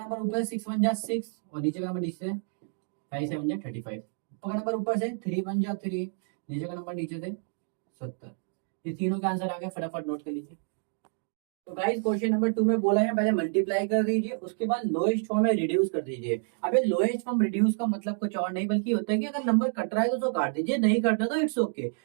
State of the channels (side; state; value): left; silent; 59 dB below the other